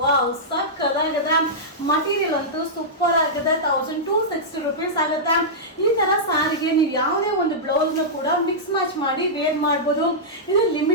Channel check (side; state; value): both; normal; correlation -0.12